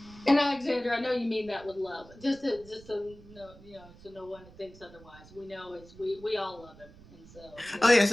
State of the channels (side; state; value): right; noise; rumble, 21 dB below the sound